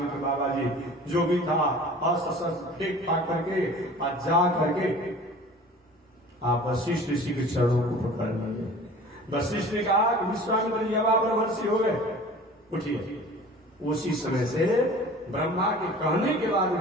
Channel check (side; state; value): both; normal; correlation 0.43